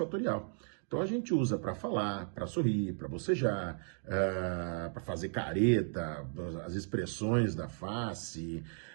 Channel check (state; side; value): silent; left; 54 dB below the other